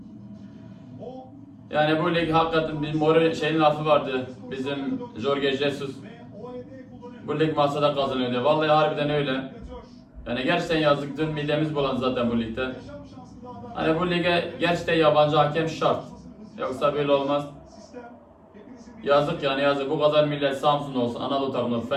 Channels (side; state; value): both; identical; correlation 1.00